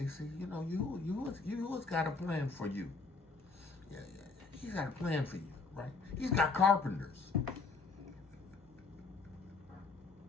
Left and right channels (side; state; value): right; quieter; 4.3 dB